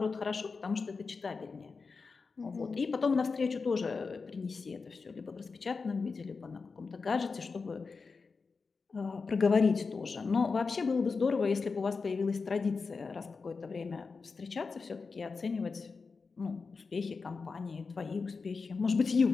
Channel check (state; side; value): quieter; right; 4.6 dB